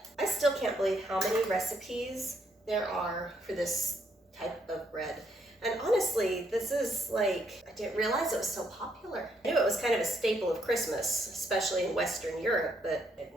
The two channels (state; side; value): normal; both; correlation 0.74